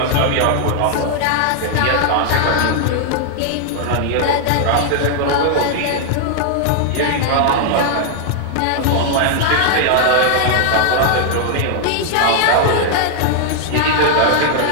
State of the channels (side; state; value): both; different; correlation 0.00